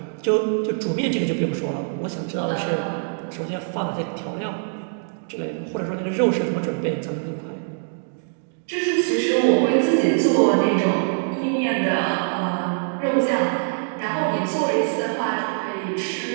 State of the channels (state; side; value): silent; left; digital silence